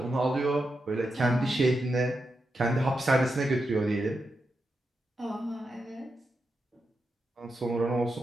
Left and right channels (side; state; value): both; normal; correlation 0.87